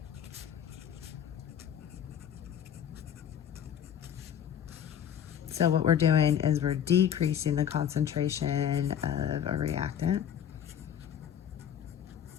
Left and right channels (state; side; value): quieter; right; 9.3 dB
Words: so what we're doing is we're decreasing the concentration of a reactant.